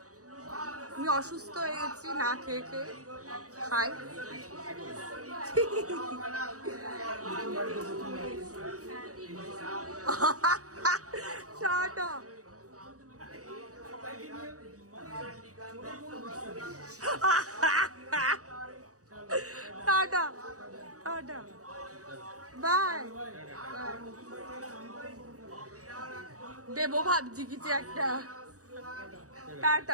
আমি অসুস্থ হয়ে গেছি না খেয়ে খেয়ে, খাই টাটা। Tata tata bye. দেবো ভাবছি কিছু একটা।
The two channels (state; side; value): late; left; 0.66 ms